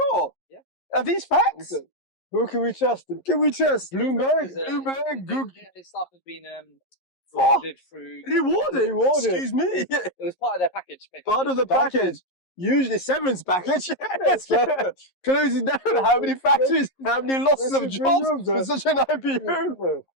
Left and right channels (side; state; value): right; late; 11 ms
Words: Yeah. Are these facts? Who can we trust? Can we trust? Bloomberg. Bloomberg, Google. His staff has been rewarded through. Rewarded. Rewarded. Excuse me. It was part of their package. basically. Part of the package. Usually severance package. Yes. Closing down how many factories, how many losses of jobs for such an IPO.